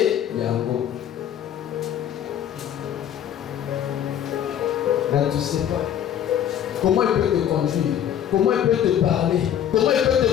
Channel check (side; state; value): right; quieter; 10.0 dB